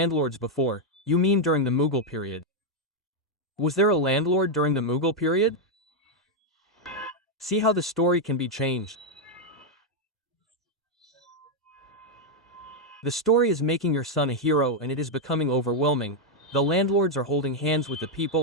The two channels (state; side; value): normal; both; correlation 0.00